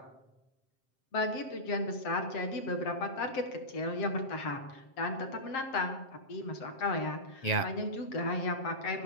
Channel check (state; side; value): late; right; 7.6 ms